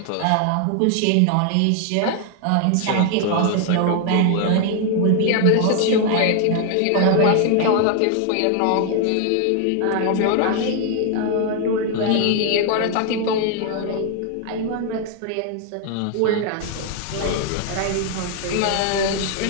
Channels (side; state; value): both; different; correlation 0.00